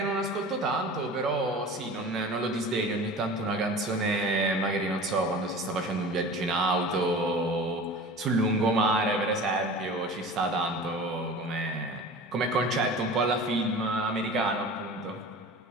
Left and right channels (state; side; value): normal; both; correlation 0.37